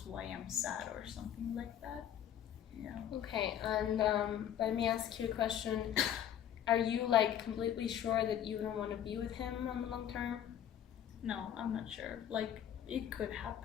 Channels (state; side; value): quieter; right; 10.1 dB